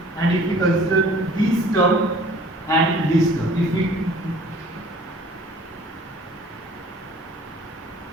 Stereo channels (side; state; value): both; normal; correlation 0.51